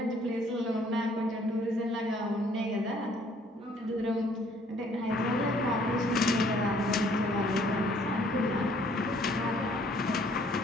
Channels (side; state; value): both; normal; correlation 0.61